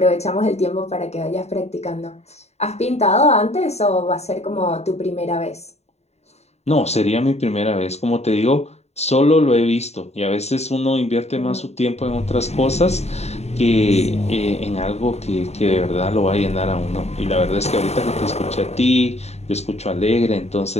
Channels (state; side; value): late; right; 0.31 ms